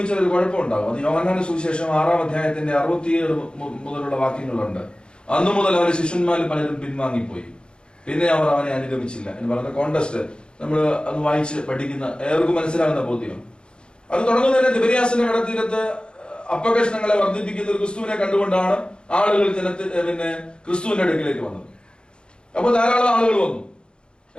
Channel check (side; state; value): right; late; 0.052 ms